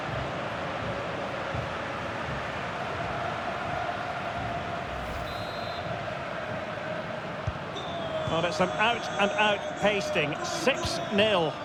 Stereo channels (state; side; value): identical; both; correlation 1.00